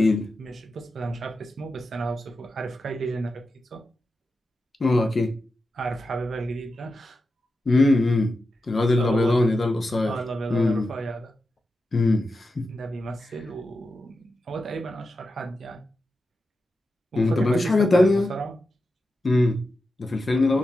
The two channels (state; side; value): normal; both; correlation 0.90